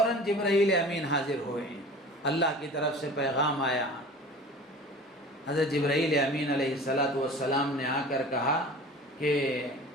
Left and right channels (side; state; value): both; normal; correlation 0.41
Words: جبرائیل امین حاضر ہوئے، اللہ کی طرف سے پیغام آیا۔ حضرت جبرائیل امین علیہ السلام نے آ کر کہا کہ